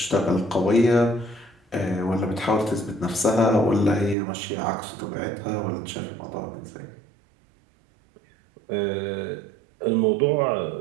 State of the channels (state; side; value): drops out; left; at 4.2 s